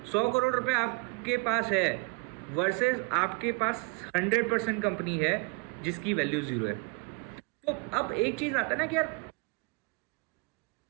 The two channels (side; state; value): left; quieter; 30.1 dB